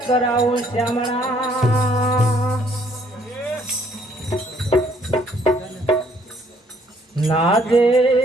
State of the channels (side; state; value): both; normal; correlation 0.64